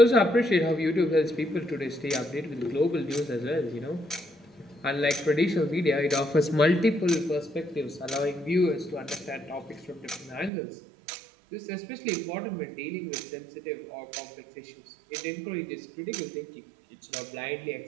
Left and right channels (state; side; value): drops out; left; at 10.5 s